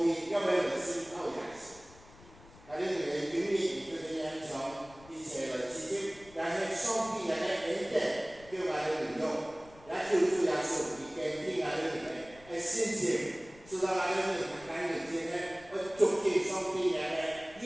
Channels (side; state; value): left; noise; rumble, 22 dB below the sound